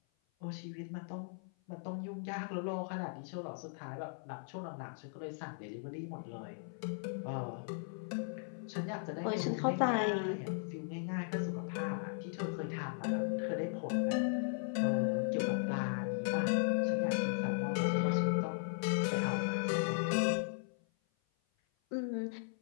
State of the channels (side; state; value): right; silent; 53 dB below the other